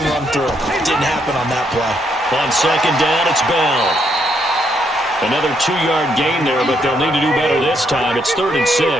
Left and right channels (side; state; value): both; normal; correlation 0.75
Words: run through. It didn't happen on that play. On 2nd down, it's Bell. Another 2-yard gain there, but they'll need to do better this time. It's 3rd and 6.